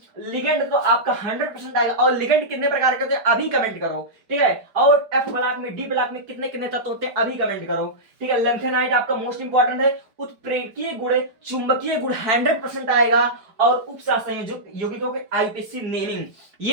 लिगेंड तो आपका 100% आएगा। और लिगेंड कितने प्रकार के होते हैं अभी कमेंट करो, ठीक है। और एफ ब्लॉक में, डी ब्लॉक में कितने कितने तत्व होते हैं अभी कमेंट करो, ठीक है। लेंथेनाइट आपका मोस्ट इंपॉर्टेंट है। उत्प्रेरकीय गुण, चुंबकीय गुण 100% आएगा। और उपसहसंयोजक यौगिकों के आईपीसी नेमिंग,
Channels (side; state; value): left; late; 4.9 ms